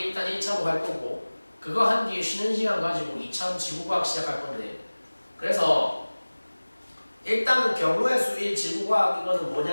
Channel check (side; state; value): both; inverted; correlation -1.00